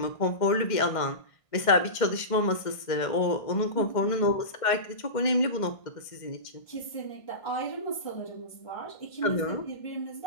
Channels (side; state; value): right; late; 1.5 ms